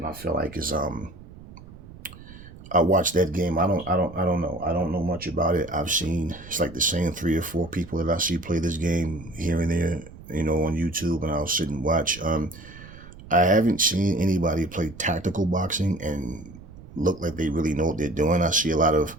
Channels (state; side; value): noise; right; rumble, 18 dB below the sound